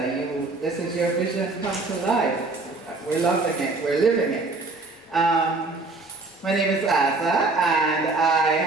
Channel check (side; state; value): left; quieter; 3.5 dB